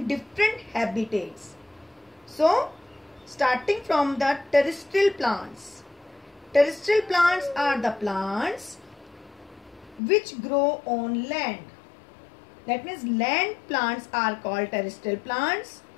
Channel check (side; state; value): right; drops out; at 10.0 s